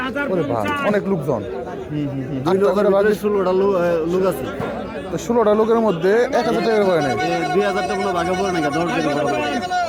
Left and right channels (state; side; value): identical; both; correlation 1.00